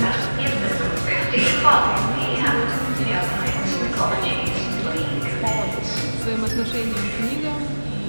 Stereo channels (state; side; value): inverted; both; correlation -1.00